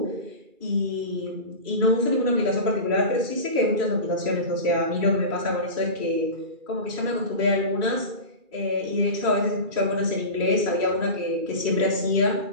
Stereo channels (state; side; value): late; left; 2.3 ms